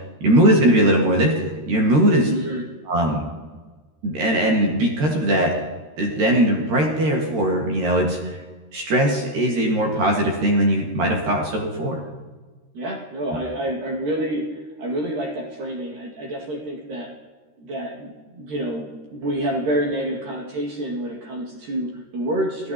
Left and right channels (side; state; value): left; late; 13 ms